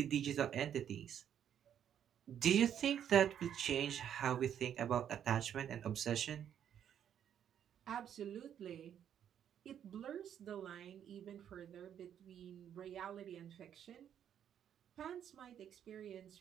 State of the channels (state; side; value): quieter; left; 9.4 dB